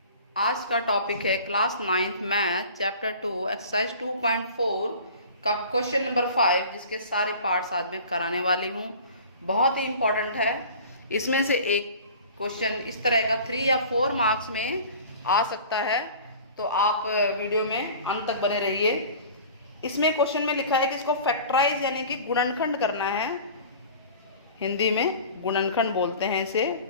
आज का topic है class 9th math chapter 2 exercise 2.4 का क्वेश्चन नंबर 5, जिसके सारे पार्ट्स आज मैं कराने वाली हूँ। बहुत ही इम्पोर्टेंट है। इसमें से एक क्वेश्चन इस तरह का 3 या 4 मार्क्स में आ सकता है, तो आप वीडियो में अंत तक बने रहिए। इसमें क्वेश्चन में लिखा है कि इसको फैक्टराइज यानी कि गुणनखंड करना है। हिंदी में गुणनखंड बोलते हैं इसे,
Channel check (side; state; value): both; inverted; correlation -0.42